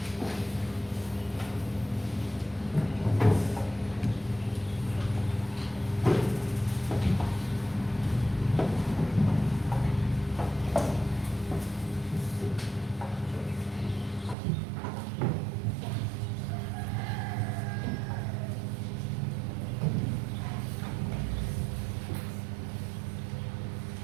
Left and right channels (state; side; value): drops out; left; at 14.4 s